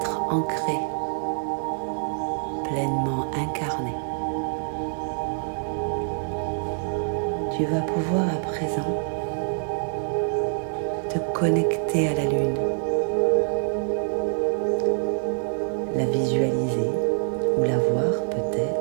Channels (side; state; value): left; silent; 61 dB below the other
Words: ancrés, pleinement incarnés. Tu vas pouvoir à présent te connecter à la lune, la visualiser ou la voir